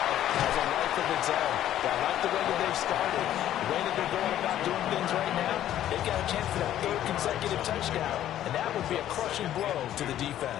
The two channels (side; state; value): right; quieter; 12.1 dB